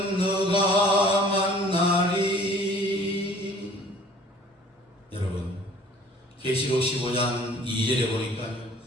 만나리. 여러분, 계시록 15장 2절에 보니까요,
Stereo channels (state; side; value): normal; both; correlation 0.52